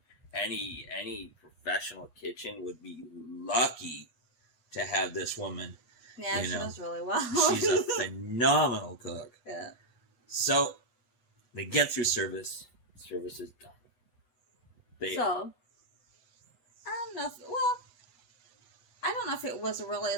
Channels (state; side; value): late; right; 8.3 ms